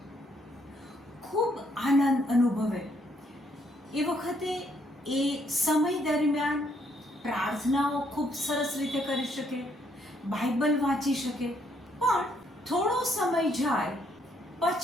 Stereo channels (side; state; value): both; normal; correlation 0.70